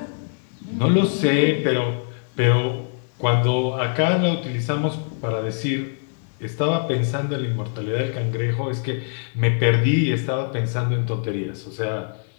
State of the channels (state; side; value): silent; right; 63 dB below the other